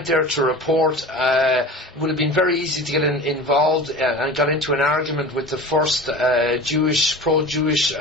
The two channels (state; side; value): normal; both; correlation 0.35